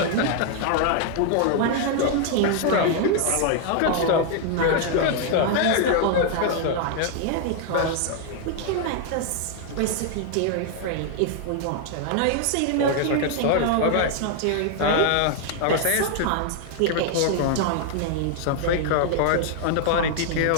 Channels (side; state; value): both; different; correlation 0.00